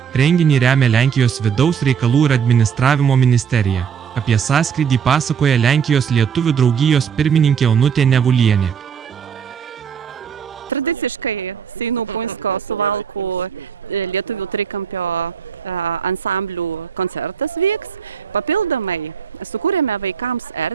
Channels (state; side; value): quieter; left; 7.3 dB